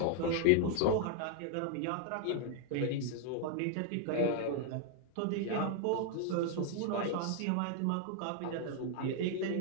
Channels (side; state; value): both; different; correlation 0.00